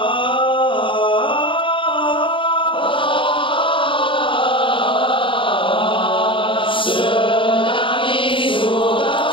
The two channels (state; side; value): late; right; 0.25 ms